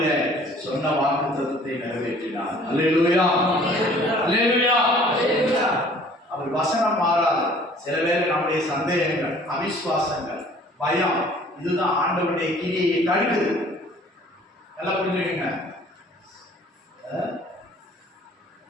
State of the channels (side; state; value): both; normal; correlation 0.53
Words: சொன்ன வாக்குத்தத்தத்தை நிறைவேற்றினார். அல்லேலூயா, அல்லேலூயா. அவர் வசனம் மாறாது. சில பேர் நம்முடைய சந்தேகங்கள், அவிசுவாசங்கள், பயம், இதுதான் ஆண்டவருடைய கிரியை தடுக்குது. நல்லா புரிஞ்சுக்கங்க.